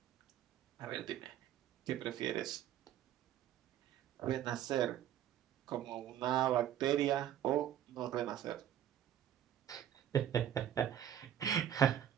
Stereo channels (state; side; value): quieter; left; 10.7 dB